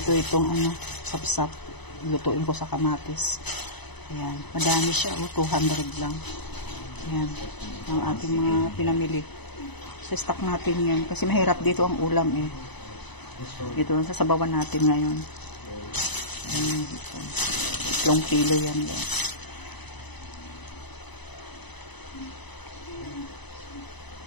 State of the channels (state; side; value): late; right; 0.99 ms